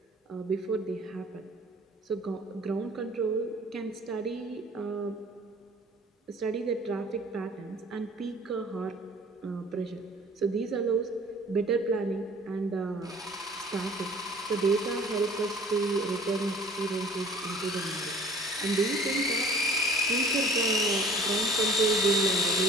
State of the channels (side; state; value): both; normal; correlation 0.49